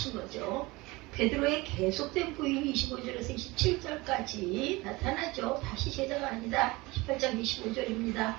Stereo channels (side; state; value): left; quieter; 22.4 dB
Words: 거죠. 베드로의 계속된 부인이 25절에서 27절까지 나타나죠. 다시 제자가 아니다. 18장 25절입니다.